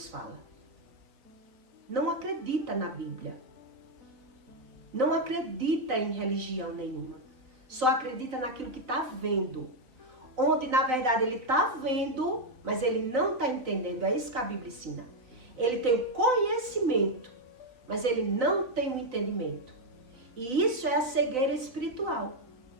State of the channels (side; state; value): left; late; 4.1 ms